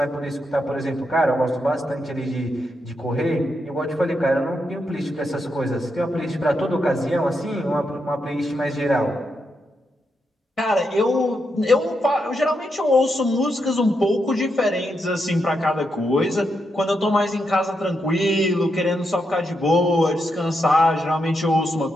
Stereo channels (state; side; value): normal; both; correlation 0.83